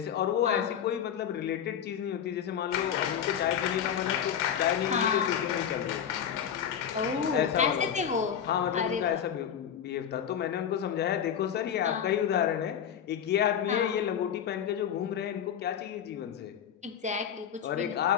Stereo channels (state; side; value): quieter; right; 8.7 dB